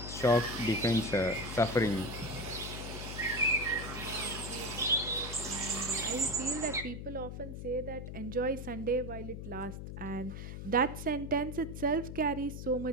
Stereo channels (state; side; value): noise; left; hum, 8 dB below the sound